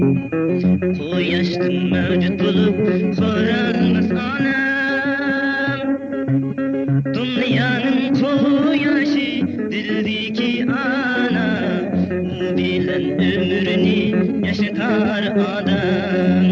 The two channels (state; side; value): identical; both; correlation 1.00